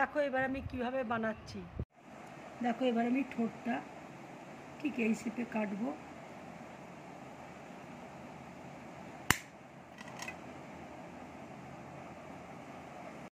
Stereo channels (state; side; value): identical; both; correlation 1.00